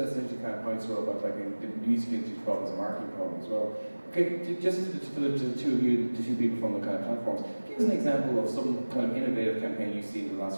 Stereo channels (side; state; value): both; inverted; correlation -1.00